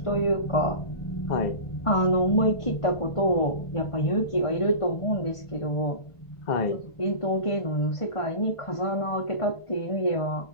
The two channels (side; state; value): right; late; 1.5 ms